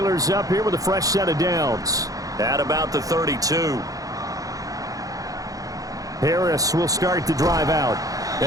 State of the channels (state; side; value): late; left; 0.17 ms